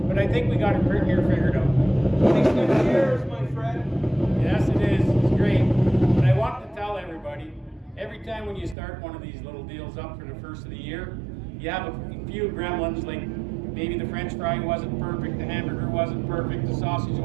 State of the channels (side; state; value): left; drops out; at 8.8 s